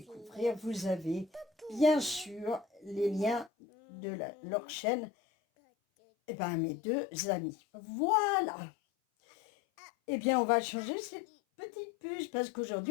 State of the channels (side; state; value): right; drops out; at 3.5 s